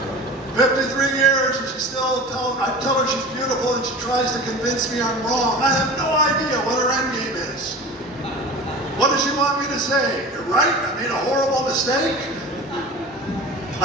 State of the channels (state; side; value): normal; both; correlation 0.35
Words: 53 years and I tell her she's beautiful and she tries to convince me I'm wrong. I have no idea what her end game is. What does she want me to say? You're right, I made a horrible mistake.